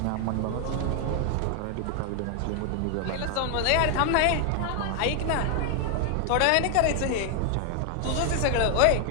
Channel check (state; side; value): different; both; correlation 0.00